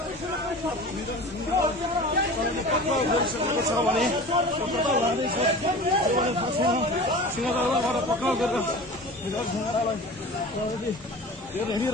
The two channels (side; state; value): both; normal; correlation 0.37